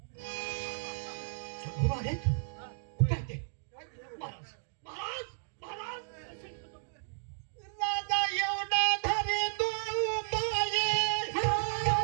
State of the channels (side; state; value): left; silent; digital silence